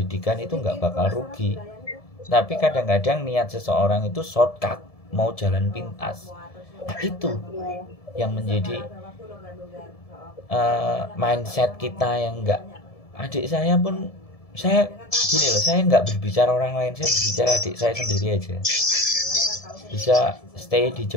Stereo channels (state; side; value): late; right; 1.7 ms